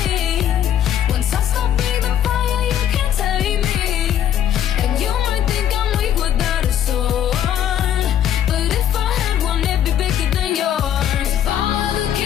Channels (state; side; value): quieter; right; 10.3 dB